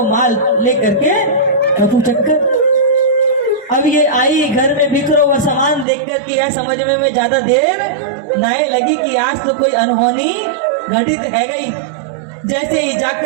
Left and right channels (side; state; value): left; drops out; at 5.9 s